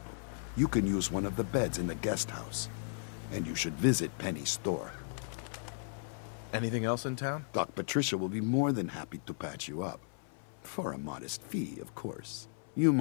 You can use one of the beds in the guest house, and you should visit Penny's store. Anything else in town? Doc Patricia will be more than happy to patch you up. For a modest fee, of course. You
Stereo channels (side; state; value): right; silent; 54 dB below the other